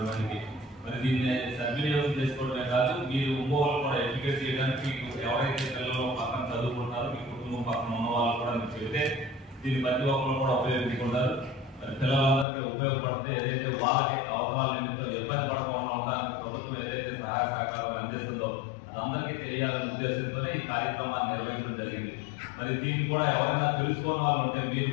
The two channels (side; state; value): right; drops out; at 12.5 s